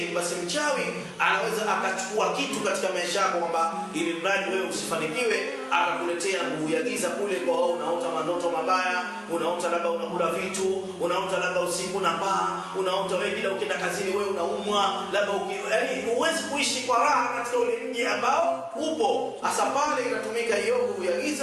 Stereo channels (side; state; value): both; identical; correlation 1.00